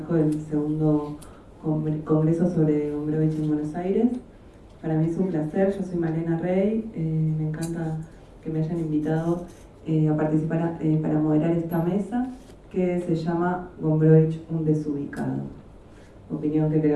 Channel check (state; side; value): identical; both; correlation 1.00